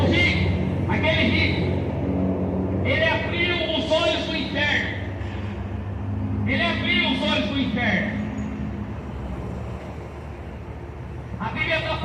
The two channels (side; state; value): both; identical; correlation 1.00